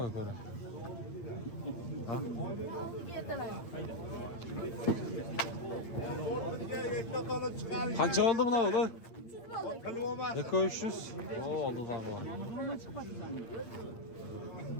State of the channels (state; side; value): late; right; 8.8 ms